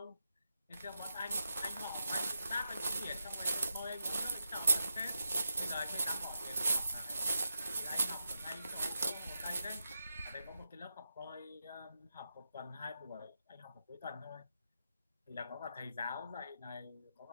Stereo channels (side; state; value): both; inverted; correlation -0.86